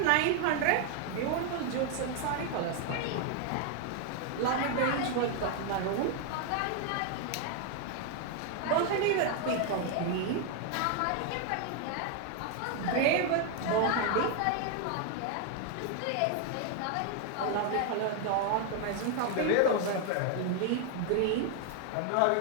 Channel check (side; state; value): both; different; correlation 0.00